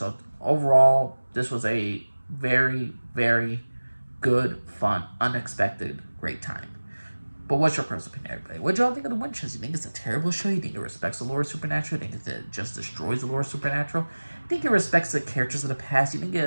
overall, this was a very, very good, fun, unexpected, great time. But what's your personal opinion, everybody? What y'all think of The Winchesters? You think it's a terrible show? You think it respects the lore of Supernatural? You think it just destroys the lore of Supernatural? You think it respects the characters of the past? You think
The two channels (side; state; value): both; inverted; correlation -1.00